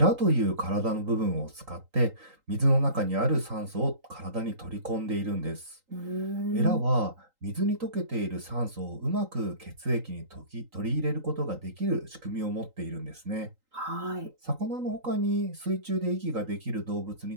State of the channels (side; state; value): left; late; 3.8 ms